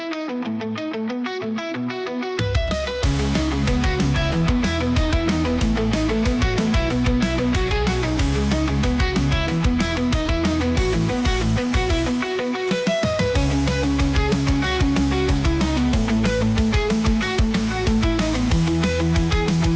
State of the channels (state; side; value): identical; both; correlation 1.00